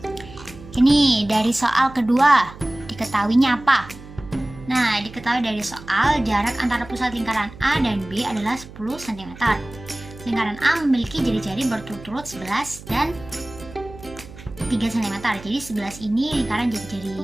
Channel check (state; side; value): noise; right; hum, 17 dB below the sound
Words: Ini dari soal kedua, diketahuinya apa? Nah, diketahui dari soal jarak antara pusat lingkaran A dan B adalah 10 cm. Lingkaran A memiliki jari-jari berturut-turut 11 dan 3 cm. Jadi 11 ini lingkaran